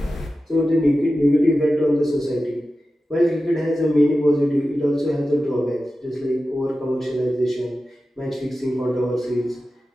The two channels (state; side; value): normal; both; correlation 0.93